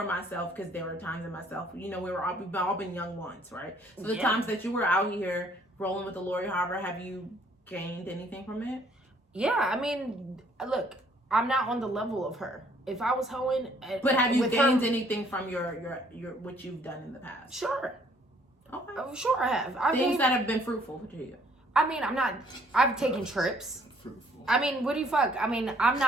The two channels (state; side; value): normal; both; correlation 0.62